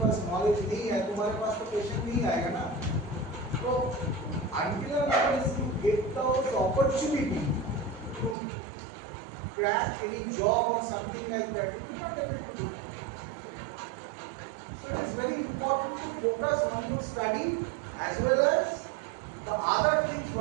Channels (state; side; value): drops out; left; at 8.3 s